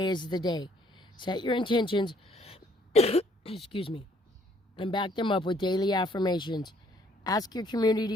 is the day. Set your intentions, excuse me, and back them up with daily affirmations. Ask your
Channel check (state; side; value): normal; both; correlation 0.64